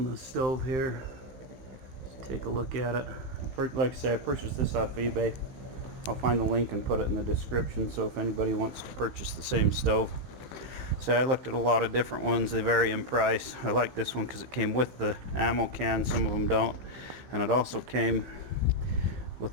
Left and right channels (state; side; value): late; left; 15 ms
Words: the stove here. Just take a look at it. Like I say, I purchased this off eBay. I'll find the link and put it in the description, so if anybody wants to purchase the same stove. So I looked at a lot of different ones. They vary in price. I like this one because it came with the ammo can. Some of them don't. And it also came